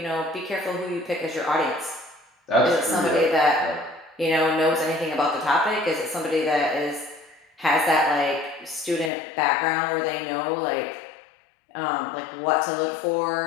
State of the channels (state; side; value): drops out; right; at 9.1 s